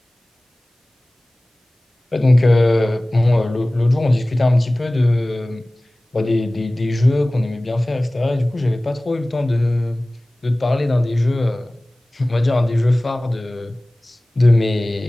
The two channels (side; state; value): both; normal; correlation 0.98